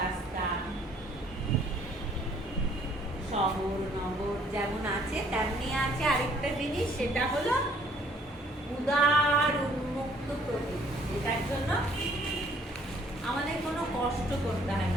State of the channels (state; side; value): normal; both; correlation 0.61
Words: রাস্তা, শহর নগর যেমন আছে তেমনি আছে আরেকটা জিনিস, সেটা হলো উদার উন্মুক্ত প্রকৃতি, যেটার জন্য আমাদের কোনো কষ্ট করতে হয়